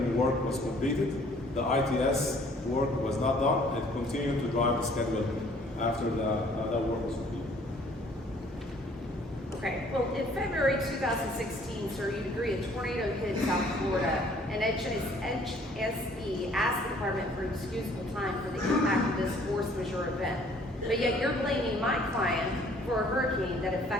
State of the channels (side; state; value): both; normal; correlation 0.58